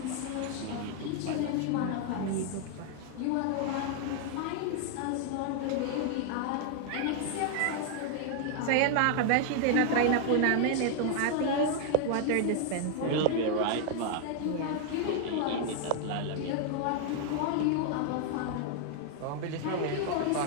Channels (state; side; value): different; both; correlation 0.00